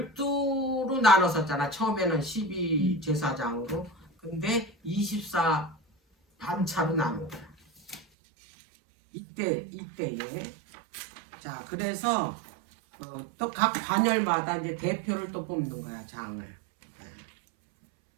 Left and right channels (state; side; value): drops out; left; at 8.1 s